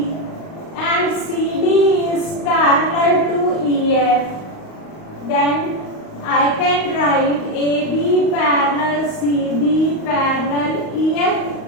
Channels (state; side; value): late; right; 38 ms